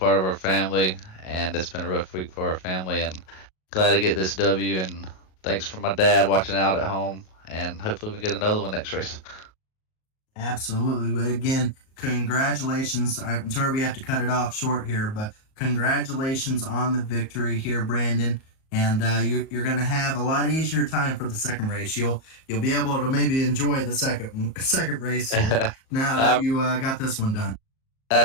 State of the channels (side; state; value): right; late; 38 ms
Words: of our family, and it's been a rough week for our family. And glad to get this W. And thanks for my dad watching out at home. And hopefully we can get another one next race. Absolutely. But again, congratulations. I'm sorry we have to cut it off short here, but congratulations on the victory here, Brandon. And you're going to have a lot easier time for the second race. You'll be able to maybe enjoy the second race here now that you got this one done.